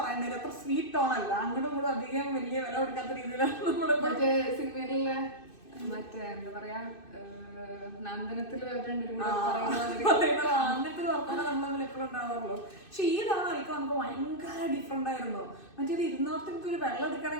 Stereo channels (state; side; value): late; right; 2.6 ms